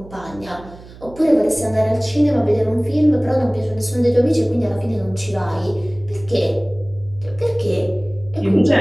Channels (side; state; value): right; noise; hum, 19 dB below the sound